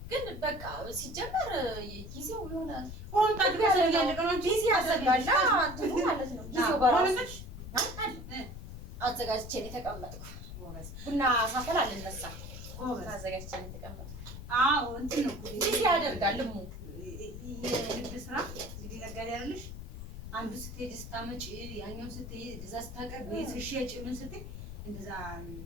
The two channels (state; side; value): noise; left; rumble, 10 dB below the sound